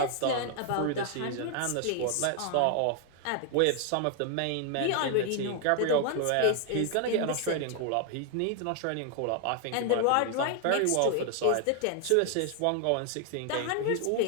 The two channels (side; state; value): both; different; correlation 0.00